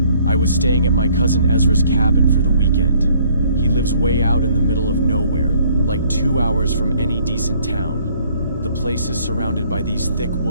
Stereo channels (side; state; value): both; inverted; correlation -0.61